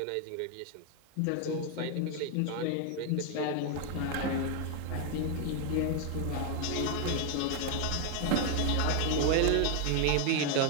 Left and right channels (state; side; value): different; both; correlation 0.00